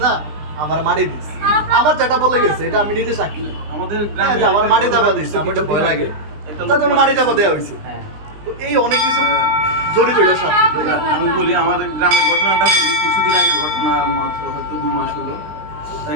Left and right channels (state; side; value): late; left; 20 ms